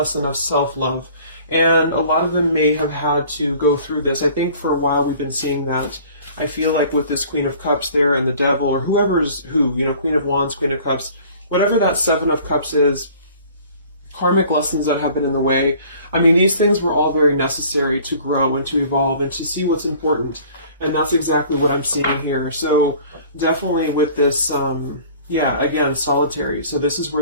of self-love. And a lot of them may have had to go through this. I think for a while we've been seeing that. I feel like with this Queen of Cups there and the Devil, or whoever's who, Queen of Wands, Queen of Cups, whatever that Seven of Cups is, karmic lessons that have been in the way. I mean, these things were all very necessary to grow and to evolve and to see what's important. And that's exactly what I'm seeing here. So definitely with this, again, solitary. So this is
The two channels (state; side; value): inverted; both; correlation -0.50